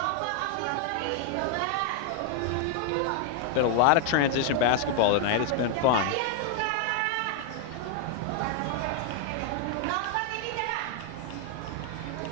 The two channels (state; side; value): different; both; correlation 0.00